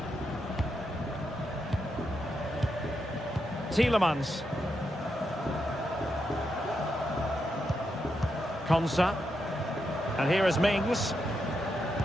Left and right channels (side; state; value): both; normal; correlation 0.84